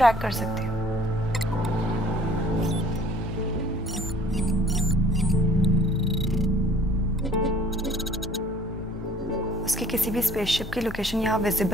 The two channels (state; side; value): normal; both; correlation 0.55